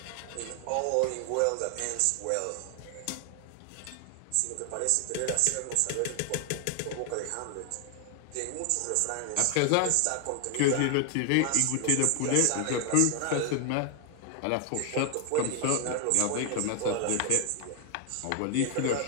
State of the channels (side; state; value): both; different; correlation 0.00